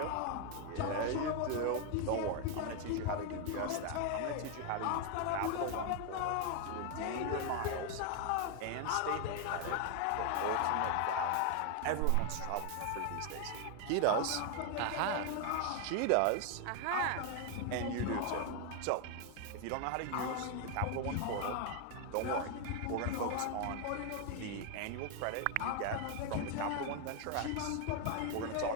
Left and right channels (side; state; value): both; different; correlation 0.01